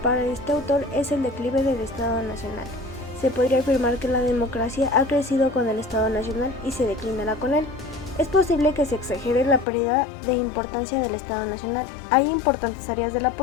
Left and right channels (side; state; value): right; drops out; at 9.7 s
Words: este autor es el declive del Estado Nacional. Se podría afirmar que la democracia ha crecido con el Estado Nacional y se declinará con él. Es posible que se exagere la pérdida de importancia del Estado Nacional. Hay importantes áreas de la